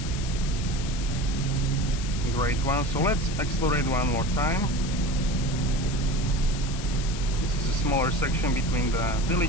great one. So let's accelerate one more time. This is a smaller section between the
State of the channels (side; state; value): left; noise; hiss, 10 dB below the sound